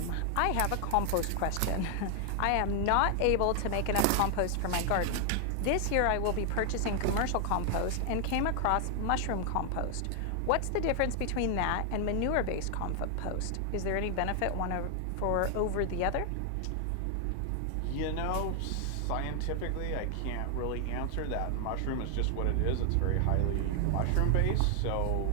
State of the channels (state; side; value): different; both; correlation 0.00